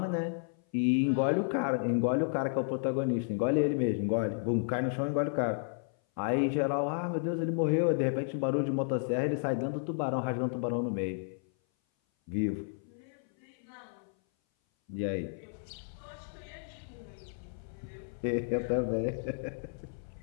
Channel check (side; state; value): right; silent; 56 dB below the other